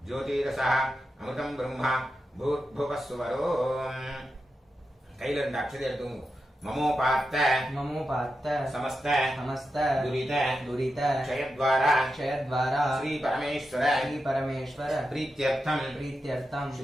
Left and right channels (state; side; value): normal; both; correlation 0.89